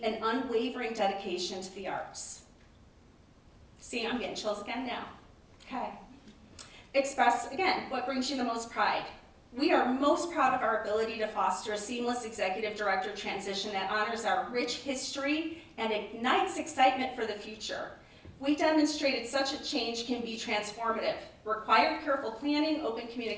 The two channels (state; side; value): identical; both; correlation 1.00